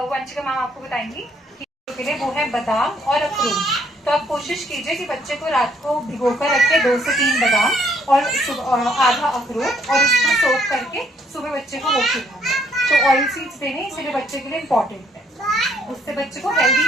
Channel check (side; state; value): both; normal; correlation 0.67